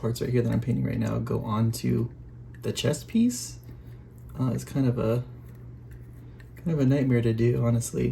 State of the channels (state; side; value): identical; both; correlation 1.00